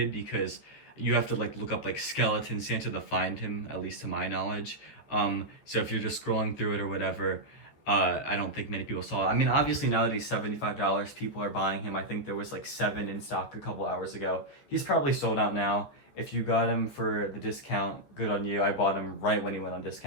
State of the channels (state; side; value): late; right; 14 ms